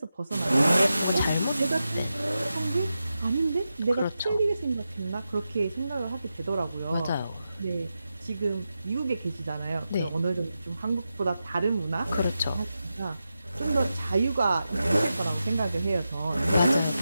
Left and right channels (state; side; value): inverted; both; correlation -0.90